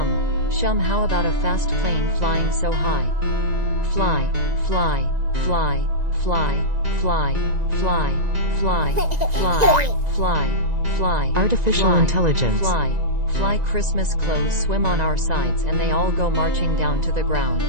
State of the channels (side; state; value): left; late; 1.9 ms